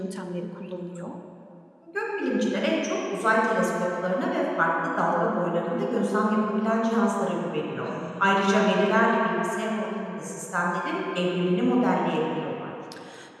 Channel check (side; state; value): both; identical; correlation 1.00